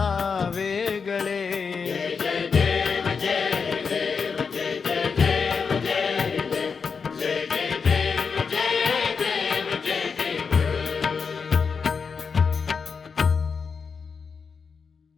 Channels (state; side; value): quieter; right; 5.6 dB